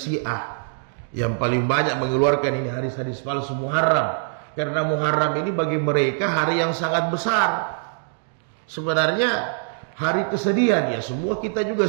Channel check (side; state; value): left; silent; digital silence